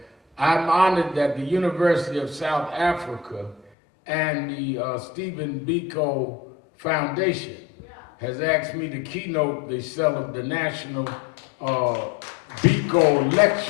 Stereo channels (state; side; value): drops out; right; at 3.7 s